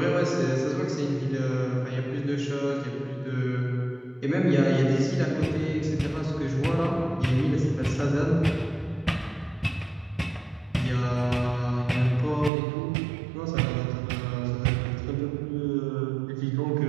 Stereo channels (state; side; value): drops out; left; at 12.5 s